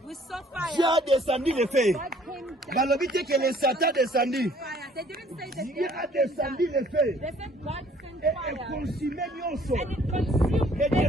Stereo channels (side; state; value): both; normal; correlation 0.58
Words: We saw fire. Dieu a descendu le feu. God came down. Balobi te que le Satan descendu. Fire. They didn't say that Dieu a they came descendu down. le feu. They said God sent Et fire. consumé nyonso. And it consumed Et